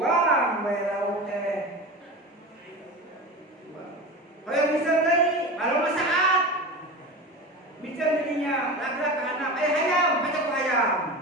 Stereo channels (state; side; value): normal; both; correlation 0.29